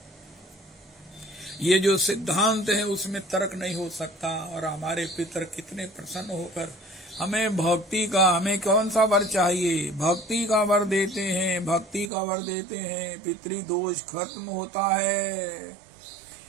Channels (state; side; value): drops out; left; at 12.1 s